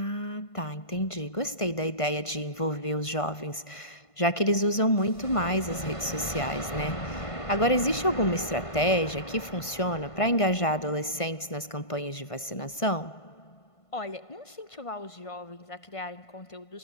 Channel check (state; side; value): late; right; 1.5 ms